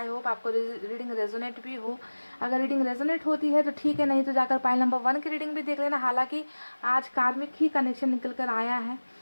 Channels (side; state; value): both; inverted; correlation -1.00